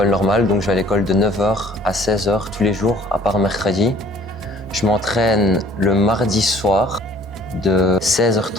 normale. Donc je vais à l'école de 9h à 16h tous les jours, à part mercredi. Je m'entraîne le mardi soir de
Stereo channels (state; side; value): normal; both; correlation 0.54